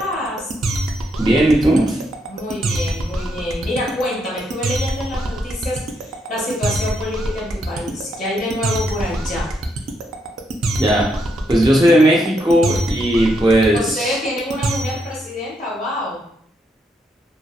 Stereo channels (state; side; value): normal; both; correlation 0.78